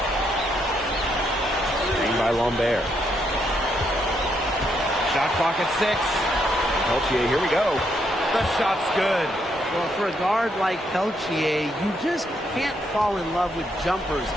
Screen by Lambert. Shot clock at 6. Peltier, here we go. The shot's good. Well, for a guard like Peltier, you just can't fall in love with jumpers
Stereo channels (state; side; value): normal; both; correlation 0.76